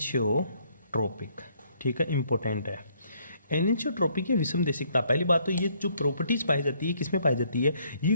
ठीक है, इंपॉर्टेंट है। एनिंशियोट्रोपिक या विषम देशिकता। पहली बात तो ये जो प्रॉपर्टीज पाई जाती है किसमें पाई जाती है? ये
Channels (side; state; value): both; inverted; correlation -0.67